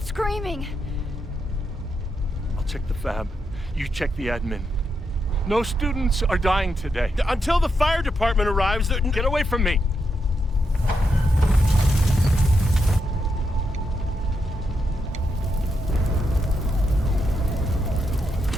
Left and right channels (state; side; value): normal; both; correlation 0.83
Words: screaming. I'll check the fab. You check the admin. No students are dying today. Until the fire department arrives, get away from me.